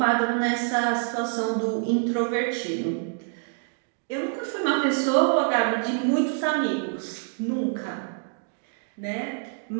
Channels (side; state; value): left; silent; 61 dB below the other